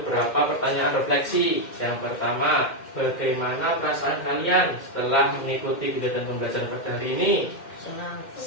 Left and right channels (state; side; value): late; right; 2.1 ms